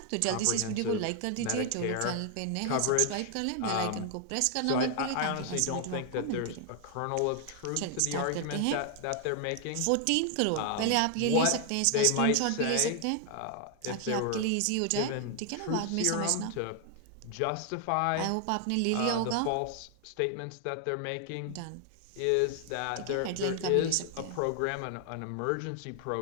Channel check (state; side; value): different; both; correlation 0.00